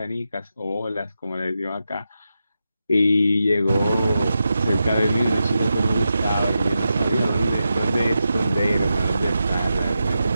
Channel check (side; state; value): both; inverted; correlation -0.89